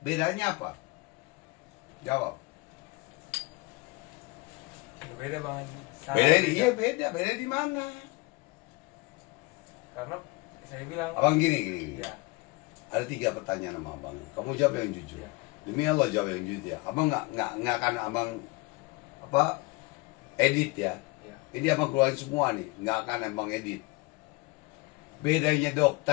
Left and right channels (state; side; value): quieter; right; 24.5 dB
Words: apa? Jawab. Beda, Bang Haji. Sangat Beda, iya beda. Beda di mana? Karena saya bilang. Abang gini. Ya. Ada 3 pertanyaan sama abang. Kamu jawab yang jujur. Ya. Demi Allah jawab yang jujur ya. Abang nggak akan abang apa edit ya. Ya. Ini abang keluarin semua nih. Nggak akan abang edit. Bedanya